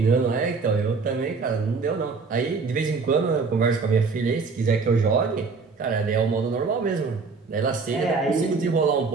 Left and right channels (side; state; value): left; quieter; 4.6 dB